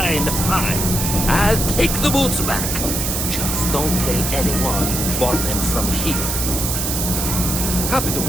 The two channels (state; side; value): noise; right; hiss, 1 dB below the sound